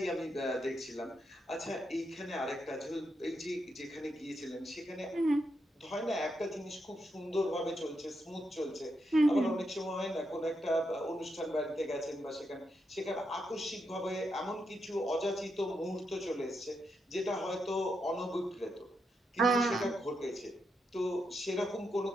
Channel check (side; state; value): both; normal; correlation 0.83